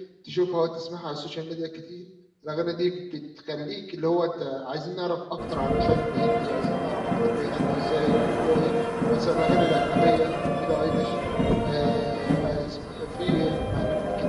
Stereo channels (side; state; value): both; identical; correlation 1.00